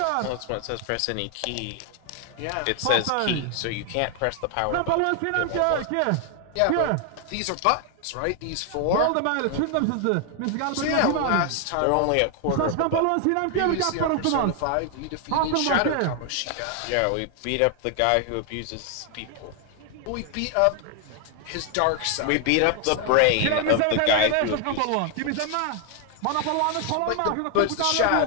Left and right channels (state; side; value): different; both; correlation 0.00